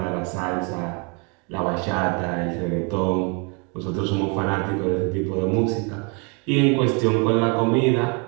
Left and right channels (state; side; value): quieter; left; 33.8 dB